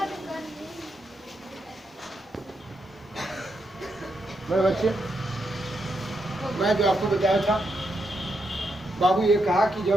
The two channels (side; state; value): both; normal; correlation 0.82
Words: मेरे बच्चे मैं जो आपको बताया था बाबू ये कहा कि